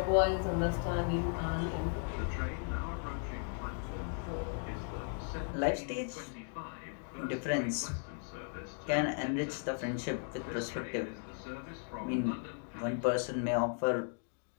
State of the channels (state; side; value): silent; right; 53 dB below the other